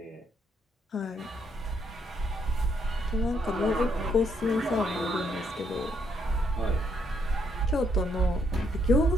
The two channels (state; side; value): normal; both; correlation 0.73